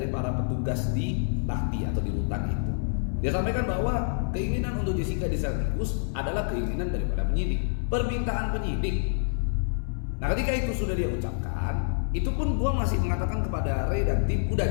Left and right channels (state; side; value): silent; right; digital silence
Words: para petugas di Lahti atau di rutan itu. Dia sampaikan bahwa keinginan untuk Jessica di sel tikus adalah keinginan daripada penyidik, permintaan penyidik. Nah ketika itu sudah dia ucapkan, itu pun gue masih mengatakan kepada Ray dan tim, udah